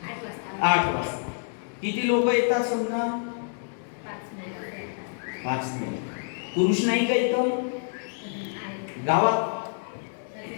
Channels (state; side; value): silent; right; digital silence